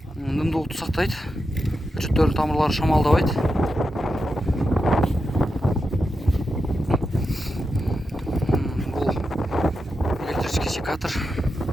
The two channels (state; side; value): normal; both; correlation 0.88